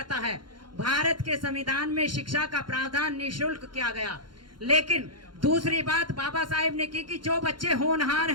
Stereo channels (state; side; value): late; left; 0.71 ms